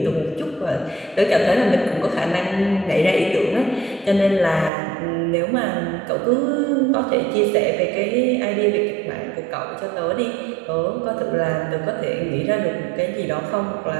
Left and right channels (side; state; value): left; drops out; at 4.7 s